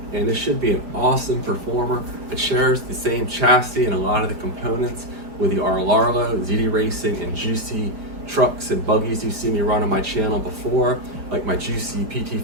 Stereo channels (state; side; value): late; left; 4.9 ms